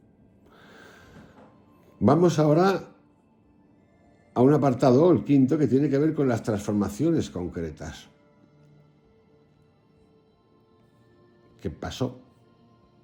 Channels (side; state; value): both; identical; correlation 1.00